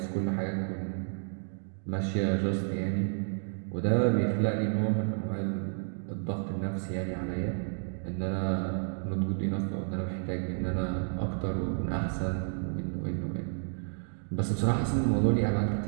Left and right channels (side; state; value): left; silent; 57 dB below the other